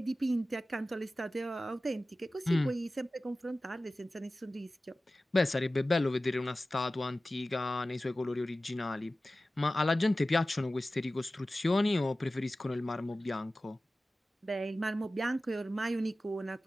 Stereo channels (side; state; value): both; normal; correlation 0.96